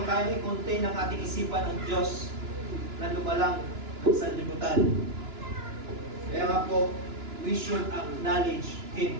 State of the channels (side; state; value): left; late; 2.9 ms